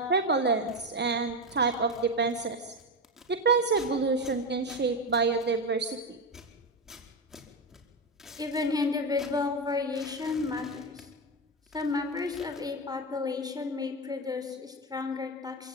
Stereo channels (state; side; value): normal; both; correlation 0.13